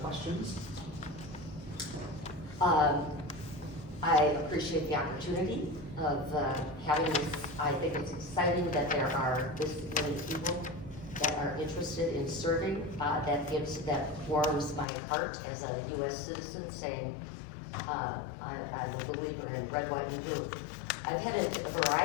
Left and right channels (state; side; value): drops out; right; at 14.9 s